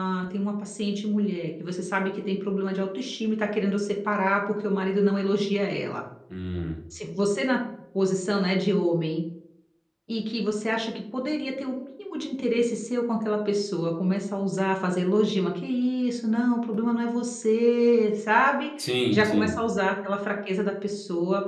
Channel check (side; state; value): both; identical; correlation 1.00